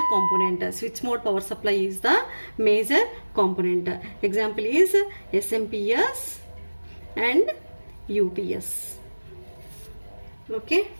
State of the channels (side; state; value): both; inverted; correlation -1.00